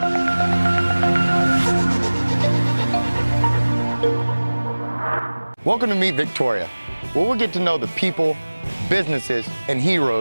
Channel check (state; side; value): inverted; both; correlation -1.00